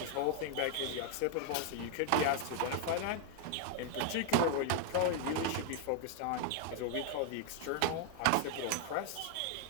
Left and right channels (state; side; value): different; both; correlation 0.00